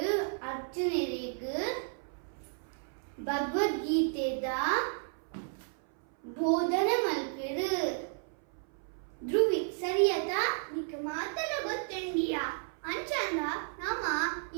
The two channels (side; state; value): left; silent; 56 dB below the other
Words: ಅರ್ಜುನರಿಗೆ ಭಗವದ್ಗೀತೆದ ಬೋಧನೆ ಮಲ್ಪೆರು ಧ್ರುವಿ ಸರಿಯತಾ ನಿಕ್ ಮಾತಲ ಗೊತ್ತುಂಡಿಯಾ ಅಂಚಂದ ನಮ್ಮ